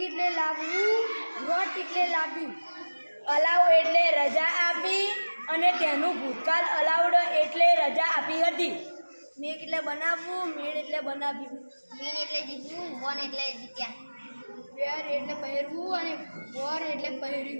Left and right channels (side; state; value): both; inverted; correlation -1.00